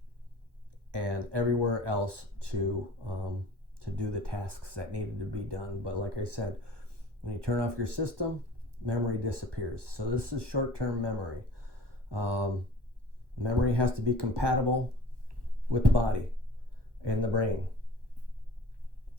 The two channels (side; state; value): left; late; 1.1 ms